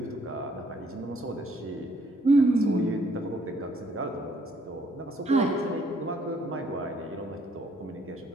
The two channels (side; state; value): both; normal; correlation 0.65